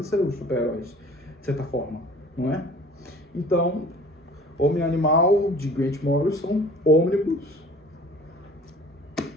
os super-heróis, de certa forma, não é? Então, Homem e Animal, de Grant Morrison, Ônibus,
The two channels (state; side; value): normal; both; correlation 0.48